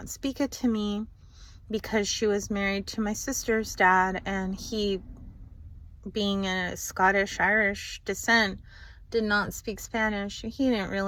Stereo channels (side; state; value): both; identical; correlation 1.00